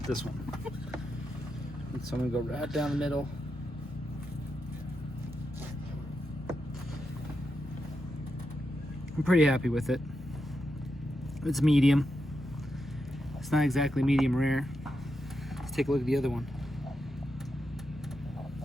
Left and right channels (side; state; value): both; normal; correlation 0.86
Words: This one. So I'm gonna go right down the middle. I'm pretty happy with it. It's medium. It's not exactly medium rare. Let's take a look at the other one.